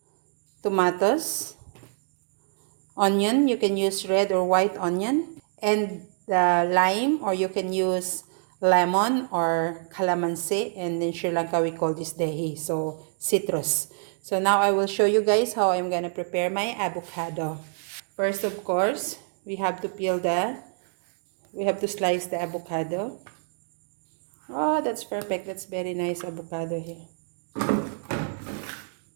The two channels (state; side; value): silent; left; digital silence